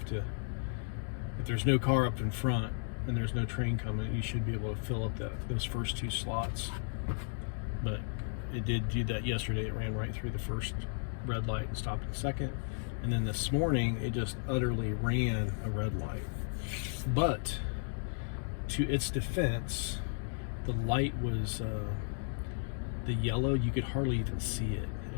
there's no car up in front and there's no train coming, you should be able to fill up those first two slots. But it did do that yesterday. It ran right through the first red light and stopped at the second. And then this morning, it just utterly ran a red light. But to its defense, the light was the yellow. You could hardly even see it.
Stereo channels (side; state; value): right; silent; digital silence